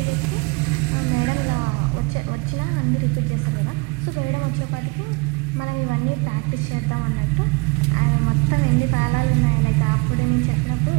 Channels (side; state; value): left; quieter; 27.4 dB